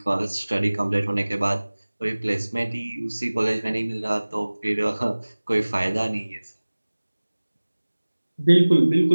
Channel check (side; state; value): both; inverted; correlation -1.00